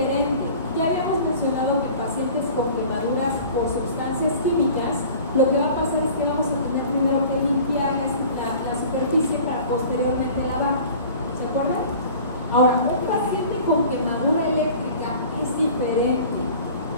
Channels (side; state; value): both; inverted; correlation -0.44